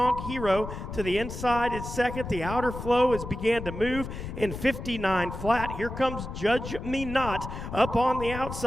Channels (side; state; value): left; noise; rumble, 8 dB below the sound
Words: Hero to the inside is 2nd. The outer flow has began to move in 59 flat. Here comes Judge Me Not up on the